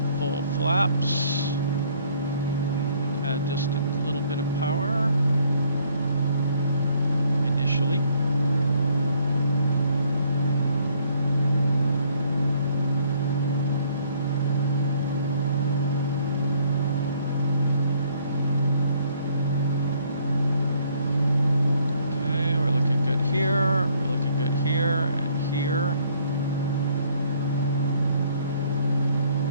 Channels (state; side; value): inverted; both; correlation -0.64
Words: full flaps. Add just a little bit of power initially. Okay, we're looking good here. We're looking good here and here.